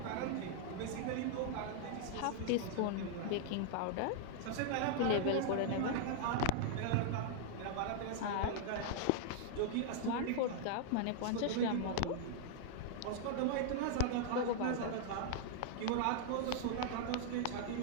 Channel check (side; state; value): both; different; correlation -0.01